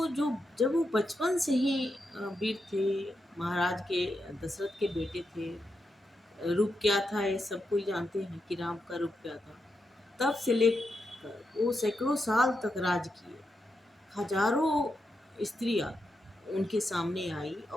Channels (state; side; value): normal; both; correlation 0.86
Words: जो जब वो बचपन से ही वीर थे, महाराज के दशरथ के बेटे थे। रूप क्या था ये सब कोई जानते हैं कि राम का रूप क्या था। तब से लेकर वो सैकड़ों साल तक राज किए। हजारों स्त्रियां उनके सामने आई